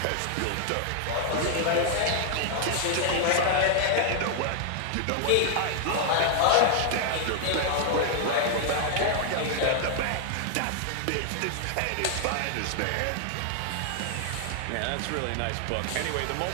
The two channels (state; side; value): different; both; correlation 0.00